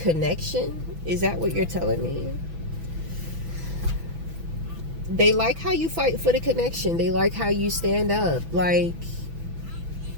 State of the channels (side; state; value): left; late; 6.1 ms